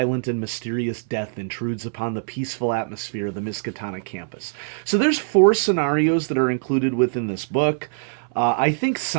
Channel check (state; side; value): silent; left; 63 dB below the other